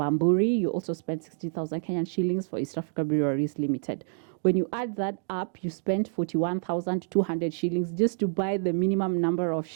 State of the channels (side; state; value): left; silent; 60 dB below the other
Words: You also spent 60,000 Kenyan shillings for East Africa Breweries Limited. When you add that up, you spent 41,200 shillings just to buy the minimum number of